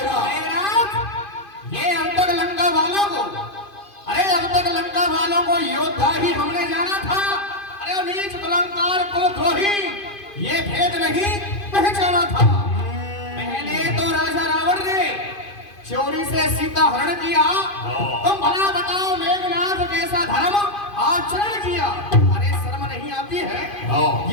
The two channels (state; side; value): late; right; 2.5 ms